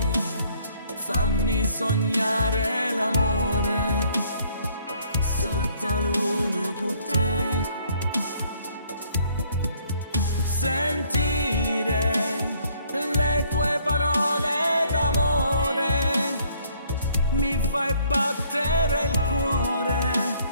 fammi sognare l'amore sotto la luna con te. Sentire le tue parole d'amore mi fai battere il cuore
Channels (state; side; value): inverted; both; correlation -0.63